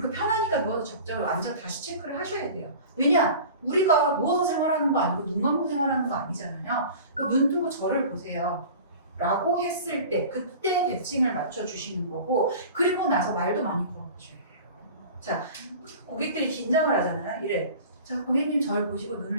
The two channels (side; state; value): both; inverted; correlation -0.39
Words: 편하니까 누워서 잡자고 앉아 다시 체크를 하셔야 돼요. 왜냐? 우리가 누워서 생활하는 거 아니고 눈 감고 생활하는 거 아니잖아요. 눈 뜨고 저를 보세요. 라고 했을 때 그때 대칭을 맞춰주시는 거고, 그리고 나서 말도 많이 걸어보셔야 돼요. 자, 고객들이 긴장을 하잖아요. 이래. 자, 고객님 저를 보시고